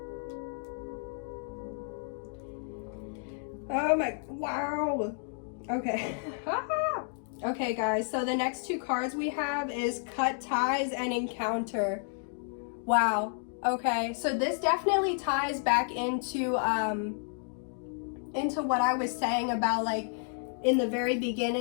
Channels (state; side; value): silent; right; 56 dB below the other